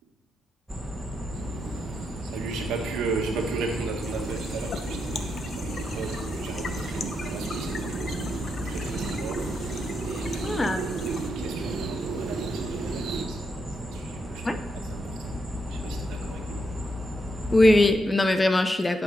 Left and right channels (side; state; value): both; normal; correlation 0.82